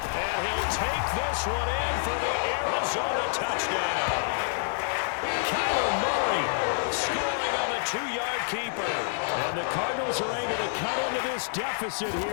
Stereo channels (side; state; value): right; silent; 56 dB below the other